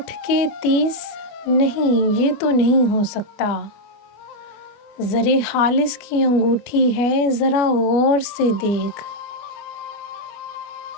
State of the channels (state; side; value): late; right; 25 ms